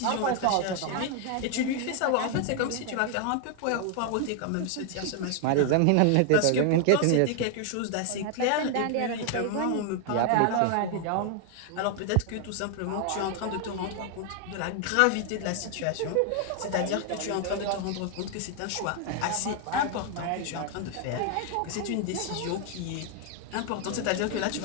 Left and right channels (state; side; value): different; both; correlation 0.00